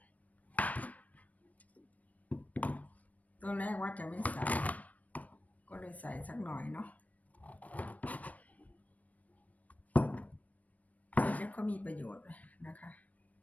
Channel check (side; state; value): right; late; 0.071 ms